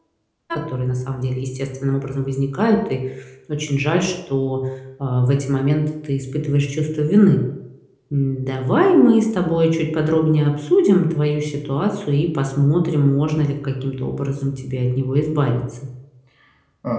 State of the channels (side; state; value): both; identical; correlation 1.00